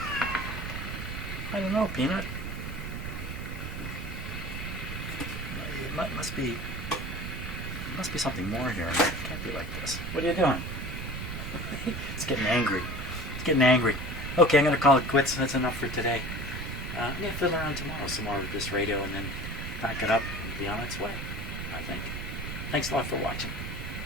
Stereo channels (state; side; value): noise; right; rumble, 6 dB below the sound